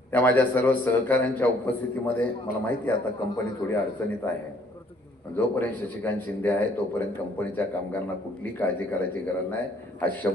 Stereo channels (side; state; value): both; normal; correlation 0.62